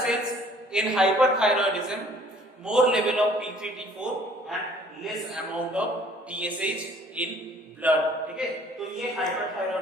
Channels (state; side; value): normal; both; correlation 0.56